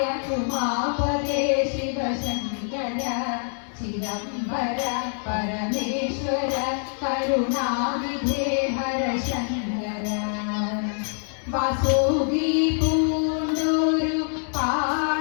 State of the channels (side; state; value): right; silent; 56 dB below the other